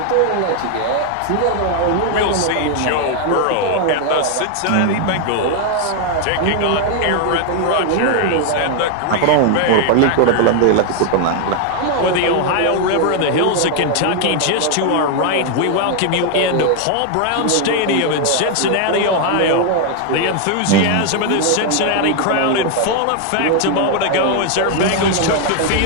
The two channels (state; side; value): different; both; correlation 0.00